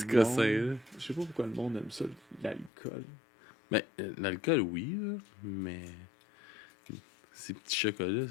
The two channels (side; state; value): right; drops out; at 2.7 s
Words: le monde- cossins, là. Je sais pas pourquoi le monde aime ça, l'alcool. Mais l'alcool, oui, là, mais ces petits chocolats,